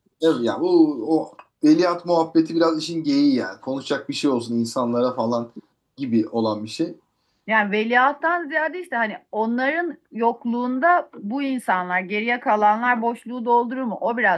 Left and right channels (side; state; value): both; identical; correlation 1.00